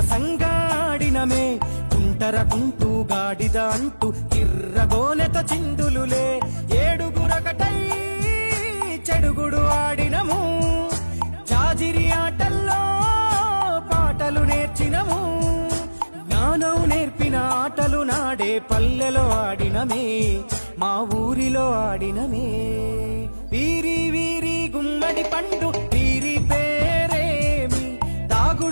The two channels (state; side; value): inverted; both; correlation -1.00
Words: కుంటరకుంటూ గాడిద అంటూ కిర్రగోనెత చిందులులే, ఏడుగురకటై చెడుగుడు ఆడినము, జాజిరి ఆటల్లో పాటలు నేర్చినము, జ్ఞానం నేర్పిన ఆటలు నాడే పల్లెలో ఆడినమే, మా ఊరిలో ఆడినమే. వీరి వీరి గుమ్మడి పండు వీరి పేరేమి,